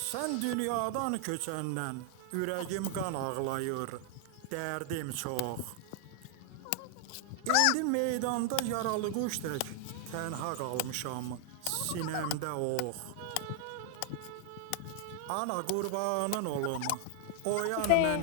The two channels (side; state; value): both; different; correlation 0.00